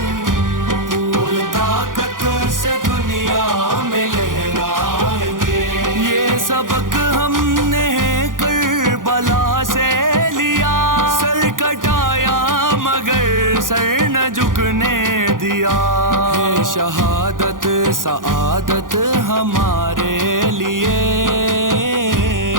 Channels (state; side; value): late; left; 0.89 ms